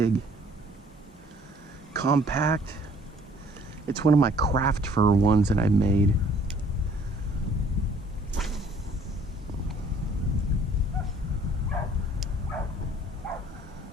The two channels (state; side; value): normal; both; correlation 0.57